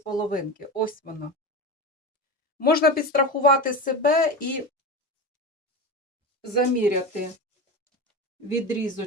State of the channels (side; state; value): both; normal; correlation 0.24